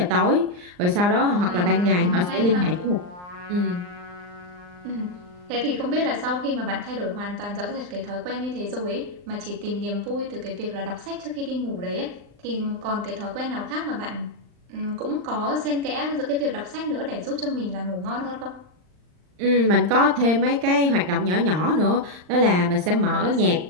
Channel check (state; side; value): late; left; 39 ms